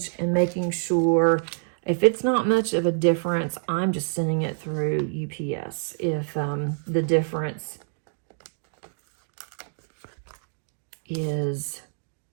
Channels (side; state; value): left; silent; digital silence